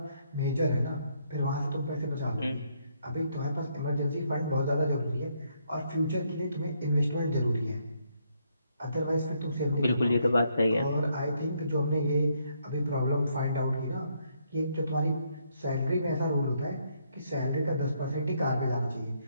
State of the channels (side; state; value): both; inverted; correlation -0.73